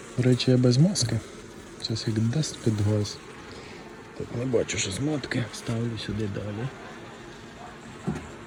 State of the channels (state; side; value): identical; both; correlation 1.00